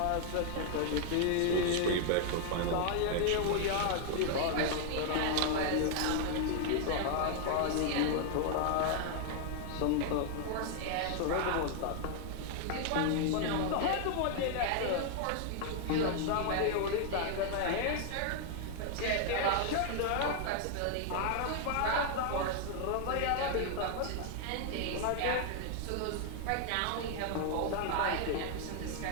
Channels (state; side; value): different; both; correlation 0.00